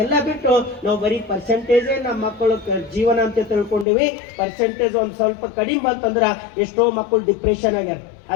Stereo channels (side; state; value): right; drops out; at 3.9 s